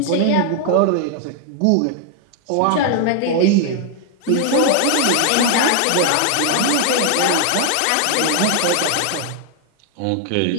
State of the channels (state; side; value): different; both; correlation 0.00